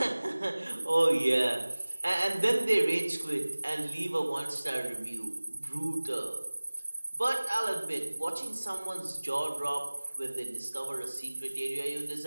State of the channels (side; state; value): both; inverted; correlation -1.00